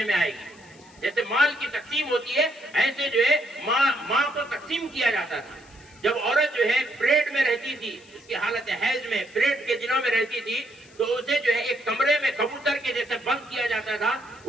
میں آئے گی۔ جیسے مال کی تقسیم ہوتی ہے ایسے جو ہے ماں کو تقسیم کیا جاتا تھا۔ جب عورت جو ہے پیٹ میں رہتی تھی، اس کی حالت حیض میں پیٹ کے دنوں میں رہتی تھی، تو اسے جو ہے ایک کمرے میں کبوتر کے جیسے بند کیا جاتا تھا،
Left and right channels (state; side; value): noise; left; hiss, 26 dB below the sound